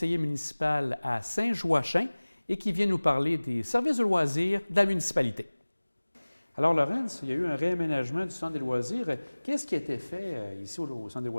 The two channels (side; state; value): both; inverted; correlation -1.00